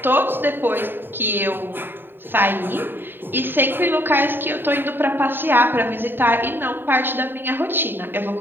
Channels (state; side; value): late; left; 0.097 ms